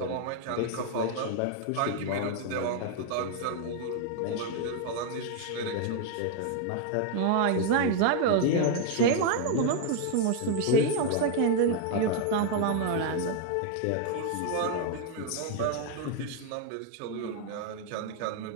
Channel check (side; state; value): both; different; correlation 0.00